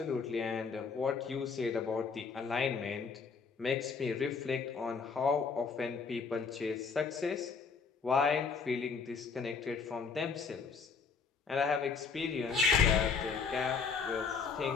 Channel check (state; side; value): quieter; right; 5.3 dB